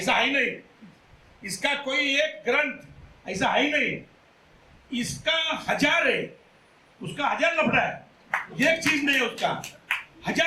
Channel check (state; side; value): identical; both; correlation 1.00